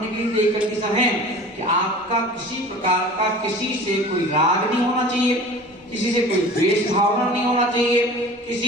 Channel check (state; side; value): normal; both; correlation 0.41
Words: के लिए एक कंडीशन है कि आपका किसी प्रकार का किसी से कोई राग नहीं होना चाहिए, किसी से कोई द्वेष भावना नहीं होना चाहिए,